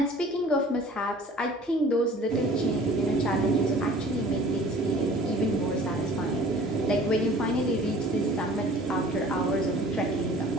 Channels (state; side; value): normal; both; correlation 0.48